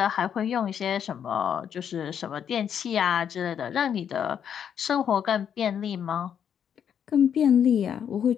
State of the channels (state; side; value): quieter; right; 8.4 dB